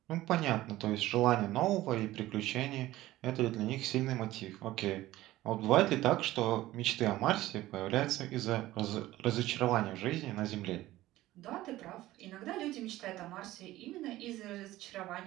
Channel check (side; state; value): left; quieter; 16.2 dB